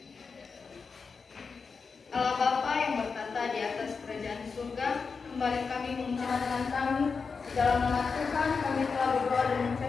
Allah Bapa yang bertata di atas kerajaan surga, kembali kami mengucapkan kami di dalam nama Tuhan kami telah berdoa dan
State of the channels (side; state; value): right; quieter; 5.1 dB